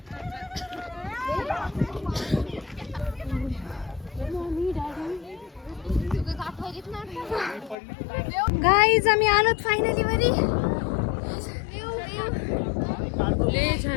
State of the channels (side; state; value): right; drops out; at 7.8 s